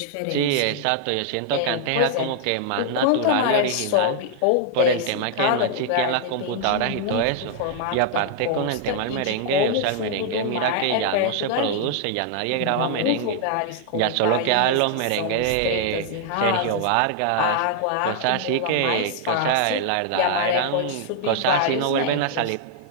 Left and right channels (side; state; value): both; different; correlation 0.00